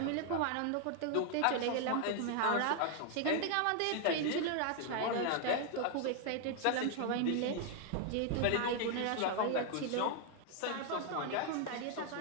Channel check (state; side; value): different; both; correlation 0.00